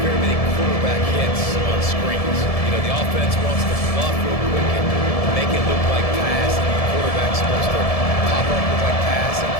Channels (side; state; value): right; late; 1.7 ms